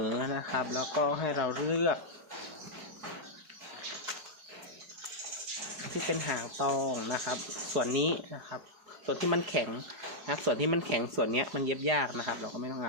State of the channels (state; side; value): late; left; 4.8 ms